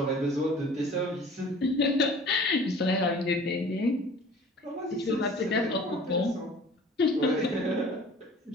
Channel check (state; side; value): normal; both; correlation 0.47